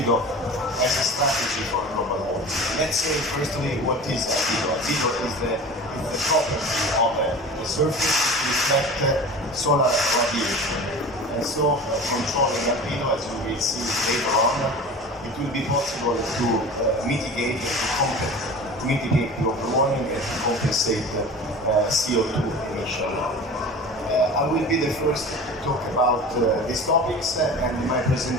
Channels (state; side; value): normal; both; correlation 0.36